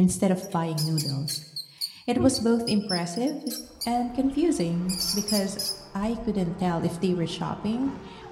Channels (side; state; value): both; identical; correlation 1.00